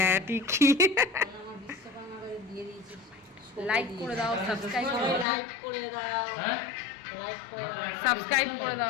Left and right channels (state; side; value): drops out; right; at 5.2 s